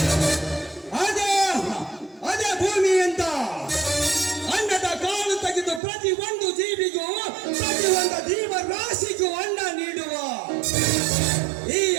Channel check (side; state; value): left; drops out; at 5.8 s